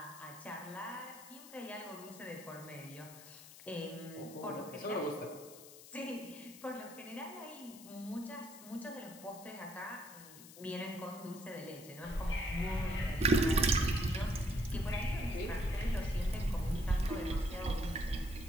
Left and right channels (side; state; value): left; noise; hiss, 17 dB below the sound